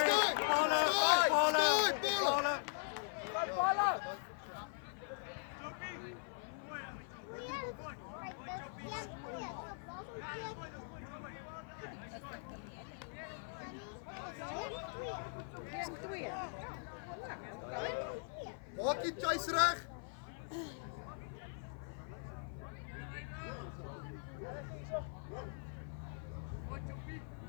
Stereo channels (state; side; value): silent; right; 50 dB below the other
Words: Maak die chase reg.